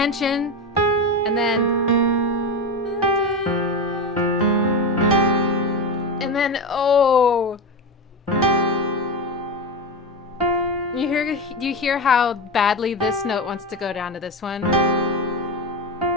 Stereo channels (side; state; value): both; normal; correlation 0.17